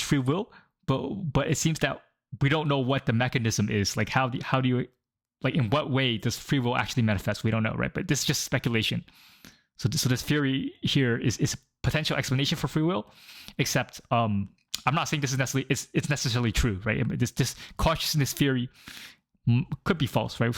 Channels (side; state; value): both; identical; correlation 1.00